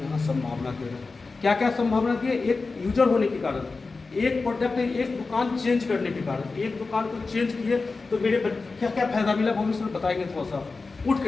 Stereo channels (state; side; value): quieter; right; 4.0 dB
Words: यहाँ संभावना दे रहा है। क्या क्या संभावना दी है? एक यूजर होने के कारण, एक प्रोडक्ट, एक दुकान चेंज करने के कारण, एक दुकान को चेंज किए तो मेरे क्या क्या फायदा मिला भविष्य में बताएंगे। थोड़ा सा उठ